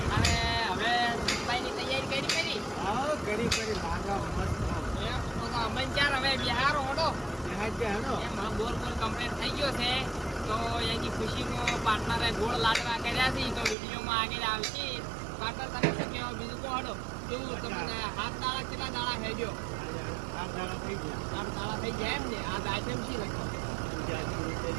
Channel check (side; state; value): left; drops out; at 13.8 s